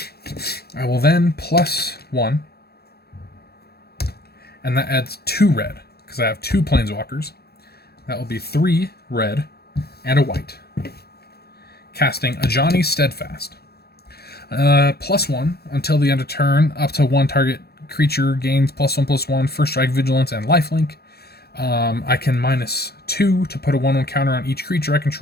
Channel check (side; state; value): right; late; 0.47 ms